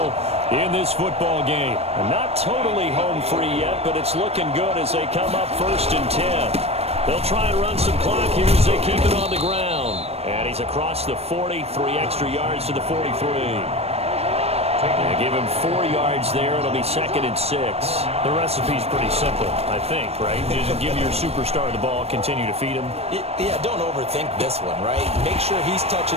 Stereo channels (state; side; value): late; left; 0.30 ms